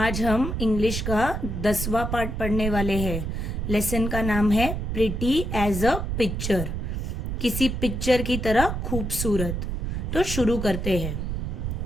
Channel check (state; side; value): noise; right; rumble, 3 dB below the sound